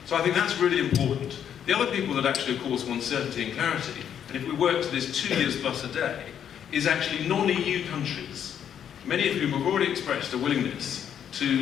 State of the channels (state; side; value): quieter; right; 9.0 dB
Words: So I think that's really important. The other people that actually, of course, want certainty and clarity, and if we work to this 2 years plus a day, is actually non-EU countries, many of whom have already expressed a willingness